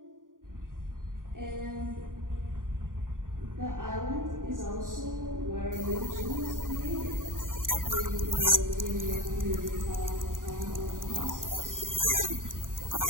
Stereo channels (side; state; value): left; late; 0.89 ms